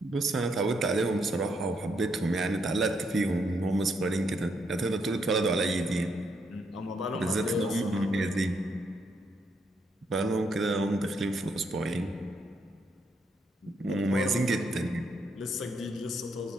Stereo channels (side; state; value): both; normal; correlation 0.76